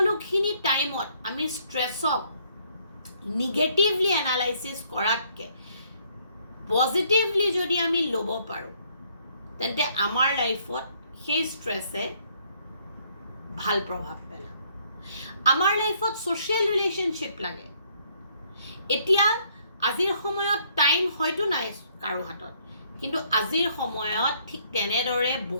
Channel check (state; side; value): inverted; both; correlation -0.67